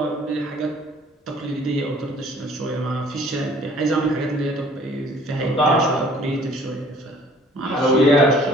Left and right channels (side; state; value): both; normal; correlation 0.55